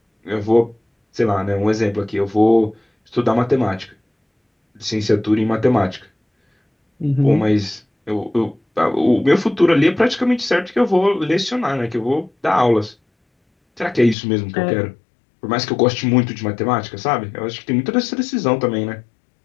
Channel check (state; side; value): drops out; right; at 14.2 s